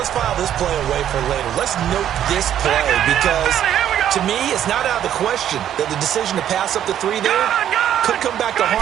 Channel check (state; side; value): quieter; left; 10.6 dB